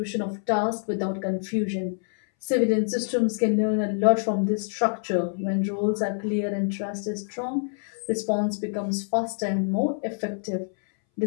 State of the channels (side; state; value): right; silent; 61 dB below the other